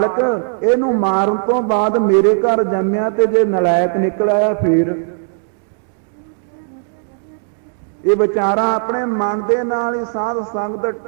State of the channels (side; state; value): left; silent; digital silence